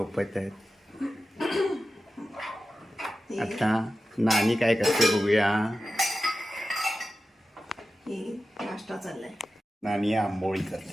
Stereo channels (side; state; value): both; normal; correlation 0.93